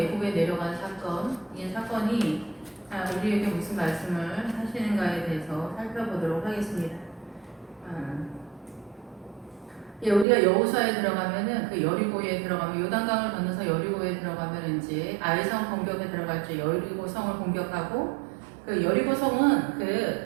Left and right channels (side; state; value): left; drops out; at 10.2 s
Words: 내려간 사건. 이 사건이 우리에게 무슨 말씀을 하시는가에 대해서 살펴보도록 하겠습니다. 예, 우리가 여호수아에 들어가면은 그 여리고에 들어가면 요단강을 건너서 여리고에 들어가면 이제 아이성 공격에 들어갈 때 여리고 성을 공격하고 그 여리고 성은